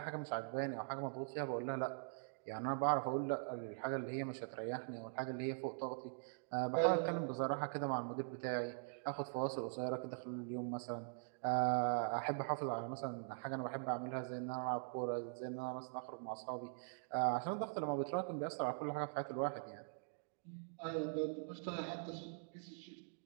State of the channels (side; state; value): left; silent; digital silence